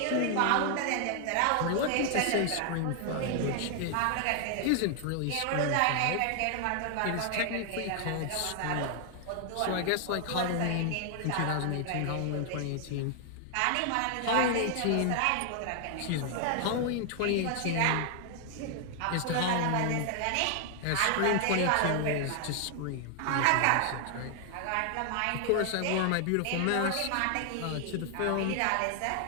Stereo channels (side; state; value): both; different; correlation 0.00